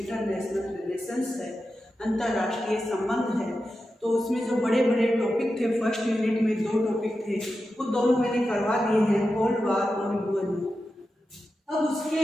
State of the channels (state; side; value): normal; both; correlation 0.90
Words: रिलेशंस है, अंतर्राष्ट्रीय संबंध है। तो उसमें जो बड़े बड़े टॉपिक थे, फर्स्ट यूनिट में 2 टॉपिक थे, वो दोनों मैंने करवा दिए हैं, कोल्ड वार और यूएन। अब उसके